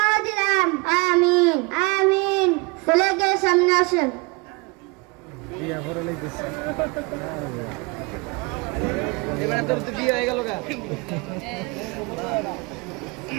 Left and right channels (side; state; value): left; quieter; 27.5 dB